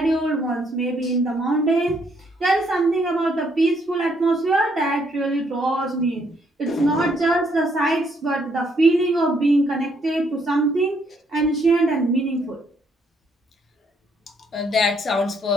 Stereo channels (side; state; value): both; normal; correlation 0.70